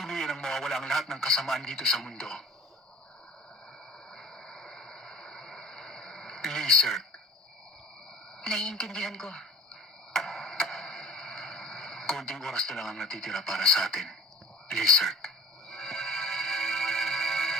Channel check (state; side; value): normal; both; correlation 0.41